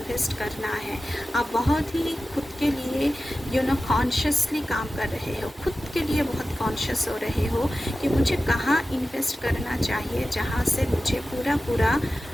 करना है। आप बहुत ही खुद के लिए कॉन्शियसली काम कर रहे हो, खुद के लिए बहुत कॉन्शियस हो रहे हो कि मुझे कहाँ इन्वेस्ट करना चाहिए जहाँ से मुझे पूरा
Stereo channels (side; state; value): both; normal; correlation 0.94